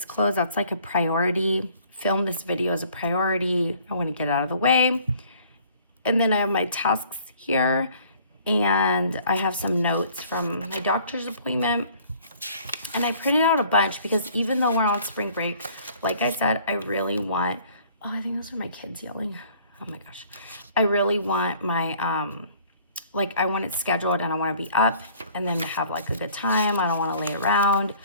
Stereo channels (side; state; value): both; inverted; correlation -0.56